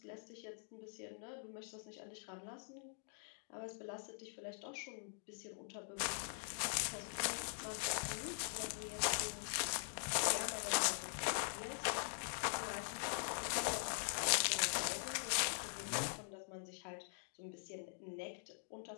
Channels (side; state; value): right; silent; digital silence